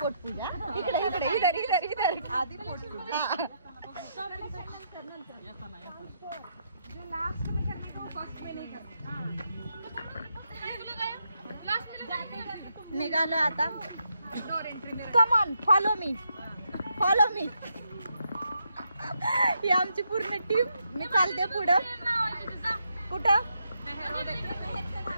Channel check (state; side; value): inverted; both; correlation -0.79